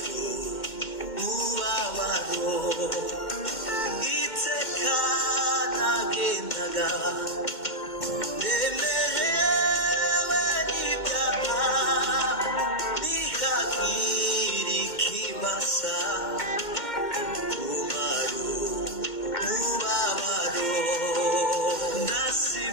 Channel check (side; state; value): right; late; 2.1 ms